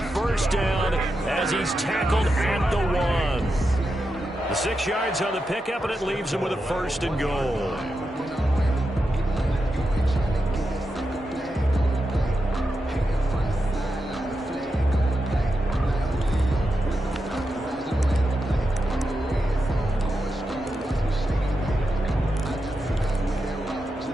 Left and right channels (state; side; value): normal; both; correlation 0.88